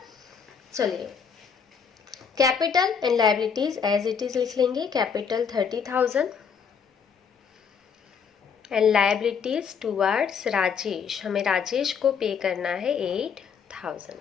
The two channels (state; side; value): quieter; right; 6.6 dB